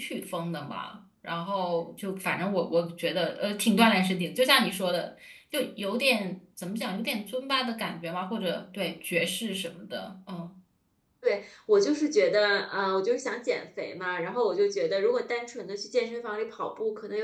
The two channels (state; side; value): identical; both; correlation 1.00